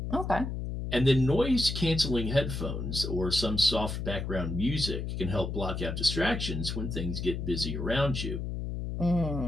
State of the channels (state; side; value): noise; left; hum, 4 dB below the sound